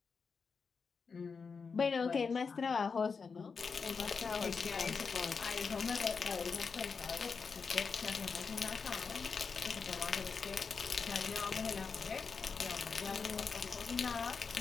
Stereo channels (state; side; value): quieter; right; 5.2 dB